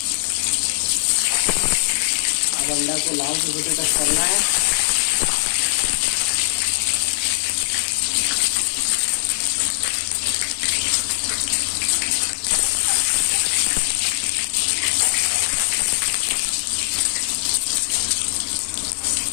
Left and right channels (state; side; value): silent; right; 62 dB below the other